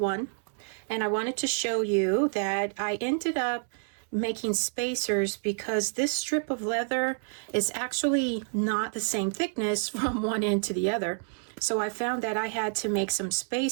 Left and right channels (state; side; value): silent; left; 59 dB below the other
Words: and I wanted to show you that I ended up making spacers because this strip of leather is actually not the same thickness from one end to the other. So I found that I had to make some